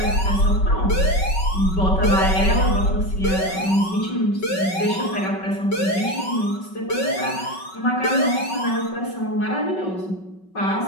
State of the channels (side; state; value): right; late; 5.3 ms